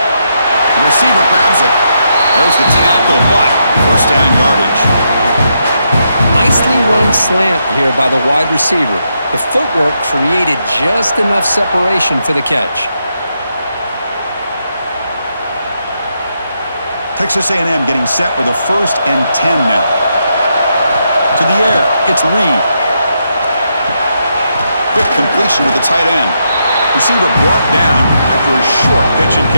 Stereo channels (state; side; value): inverted; both; correlation -0.81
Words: The receiver grabs it. There's the tackle, but first down yardage. Nicely run slant here by the wide receiver. The footwork created just enough separation for the catch. Texas A&M getting set with a 1st and 10 now. To the air, it's Reed. Quick completion to the tight end. Receiver brought down after a short pitch and